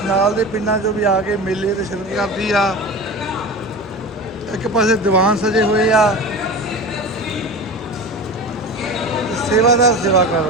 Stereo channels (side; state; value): both; normal; correlation 0.30